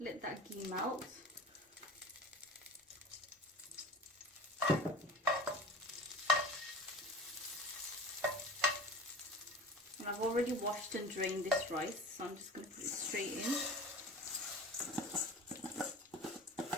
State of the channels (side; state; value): both; normal; correlation 0.37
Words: that ghee melt. And I've already washed and drained this rice, so I'm just going to put it straight in.